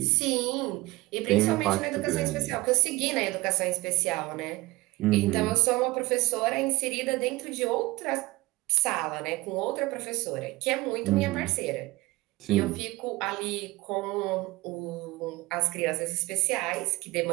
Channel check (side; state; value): left; quieter; 20.4 dB